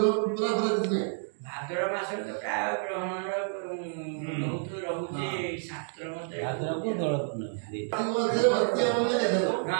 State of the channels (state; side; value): silent; left; digital silence